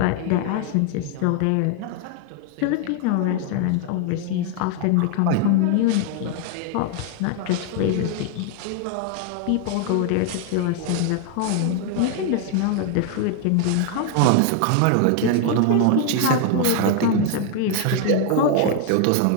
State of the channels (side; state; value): both; different; correlation 0.00